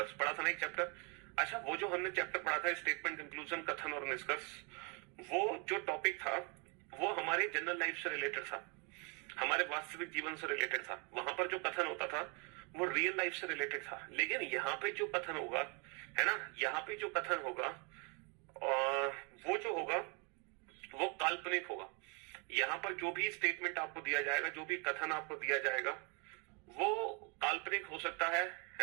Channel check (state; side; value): quieter; left; 33.3 dB